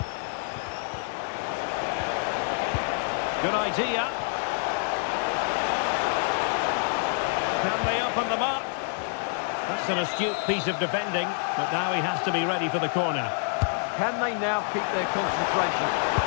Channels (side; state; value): right; silent; 60 dB below the other